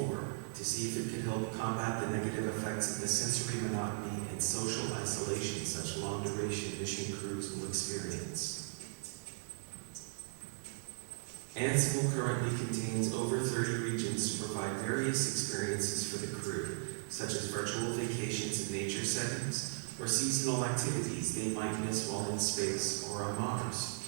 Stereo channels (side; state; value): left; silent; digital silence